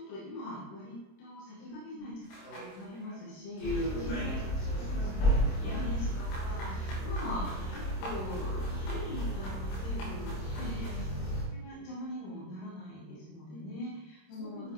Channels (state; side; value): late; right; 26 ms